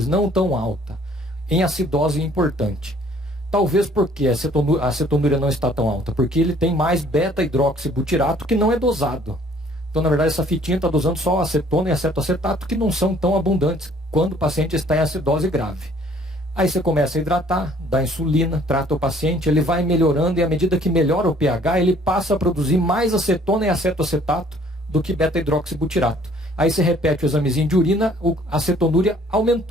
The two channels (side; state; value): both; normal; correlation 0.58